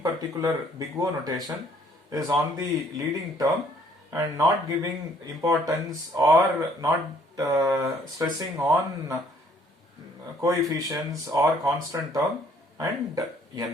particular big O notation, is on the leading term and not giving importance or not stressing on coefficients or constant term and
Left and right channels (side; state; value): both; normal; correlation 0.62